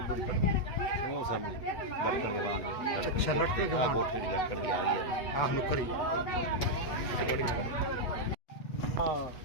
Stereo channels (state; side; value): late; right; 8.4 ms